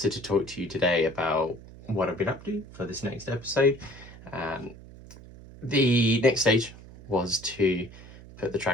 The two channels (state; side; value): noise; right; hum, 18 dB below the sound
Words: to talk to you today about what I've been up to for this next episode. The next stage was to put the